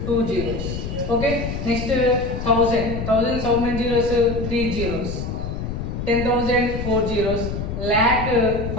2 zeros. Okay. Next, 1000. 1000 how many zeros? 3 zeros. 10,000 4 zeros. Lakh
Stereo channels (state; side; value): noise; left; rumble, 5 dB below the sound